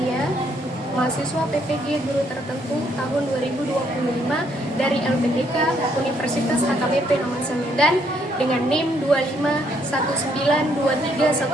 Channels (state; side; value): normal; both; correlation 0.71